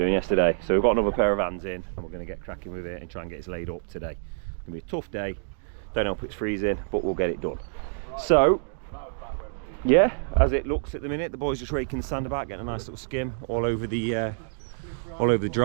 yesterday. So we've got another pair of hands in and we're going to get cracking with it and try and get it laid up today. It's going to be a tough day, don't know if it's freezing, but we'll get it done. So yeah, as it looks at the minute, the boys just raking the sand about, getting a nice little skim all over the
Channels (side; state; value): left; silent; digital silence